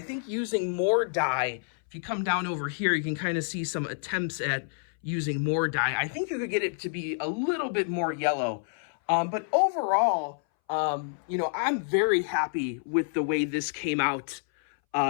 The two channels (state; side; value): silent; right; 59 dB below the other